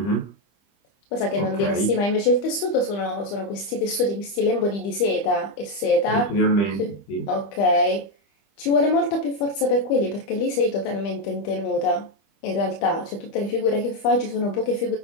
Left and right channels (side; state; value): right; late; 25 ms